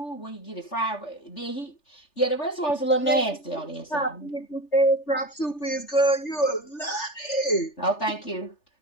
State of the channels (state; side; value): late; right; 3.4 ms